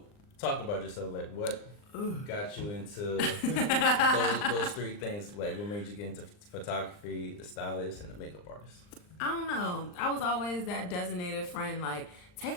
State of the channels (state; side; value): late; right; 39 ms